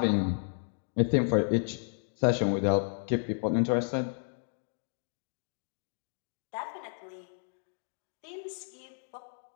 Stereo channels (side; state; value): right; silent; digital silence